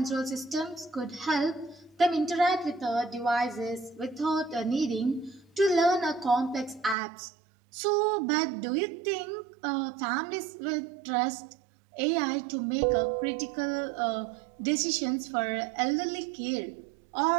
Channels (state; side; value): drops out; left; at 7.0 s